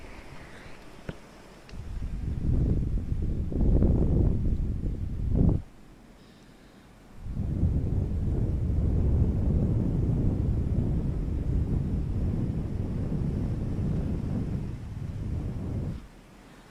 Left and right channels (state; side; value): identical; both; correlation 1.00